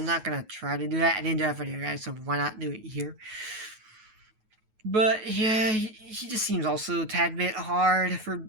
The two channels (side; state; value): left; late; 9.3 ms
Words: not gonna try to do that. I didn't do that for you guys, so why not do it here? But yeah, he just seems also a tad bit hard for